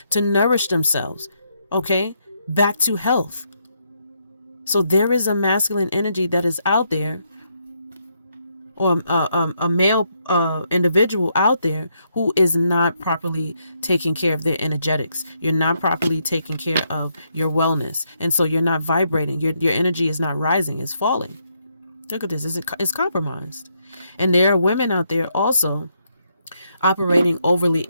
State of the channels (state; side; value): inverted; both; correlation -0.76